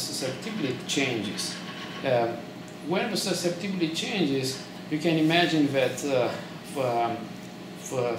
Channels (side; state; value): both; identical; correlation 1.00